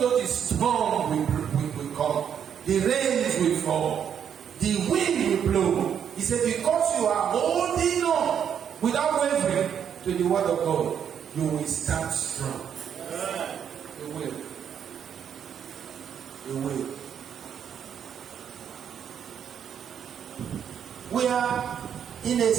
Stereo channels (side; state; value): left; quieter; 8.4 dB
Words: the storm will come, the rains will fall, the wind will blow, He said, because you are holding on without wavering to the word of God, you will stand strong. You will. You will. We are in a